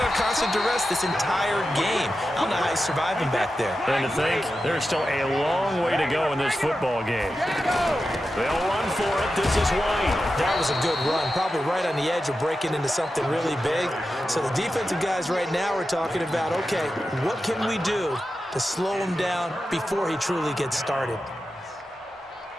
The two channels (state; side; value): normal; both; correlation 0.91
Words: on constant duress this entire game. I don't know how he's surviving back there. And to think, there's still a long way to go in this football game. They'll run for it. This is White. That was a good run, probably right on the edge of breaking into something really big. So the defensive guys right now are talking about, okay, what can we do to slow him down before he truly gets started?